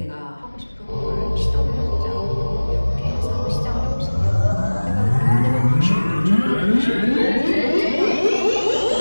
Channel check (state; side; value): inverted; both; correlation -1.00